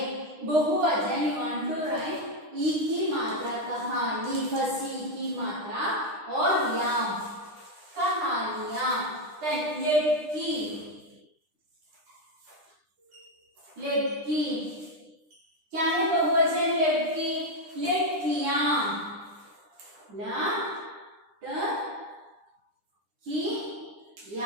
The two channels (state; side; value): late; left; 9.9 ms